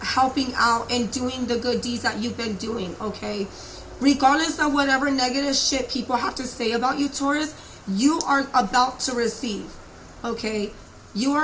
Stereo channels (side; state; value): both; identical; correlation 1.00